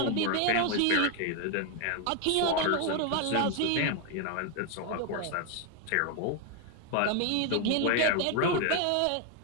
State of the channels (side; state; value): both; different; correlation 0.01